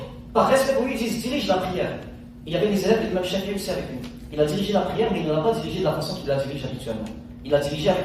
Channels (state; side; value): identical; both; correlation 1.00